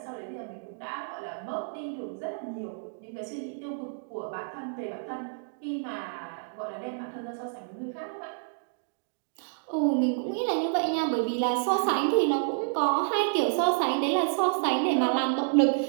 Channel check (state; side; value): silent; left; digital silence